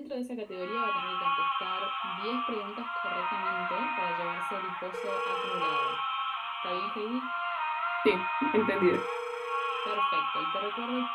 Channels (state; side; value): identical; both; correlation 1.00